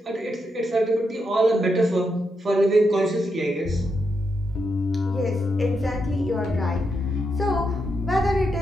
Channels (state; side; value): normal; both; correlation 0.83